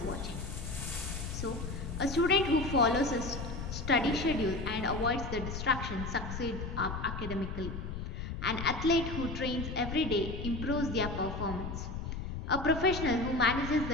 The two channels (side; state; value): left; noise; rumble, 6 dB below the sound